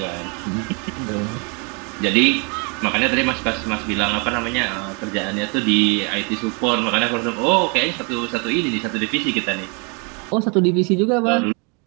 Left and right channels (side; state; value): left; quieter; 33.3 dB